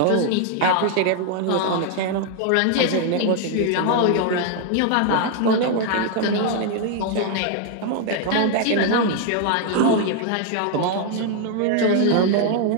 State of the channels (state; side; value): different; both; correlation 0.00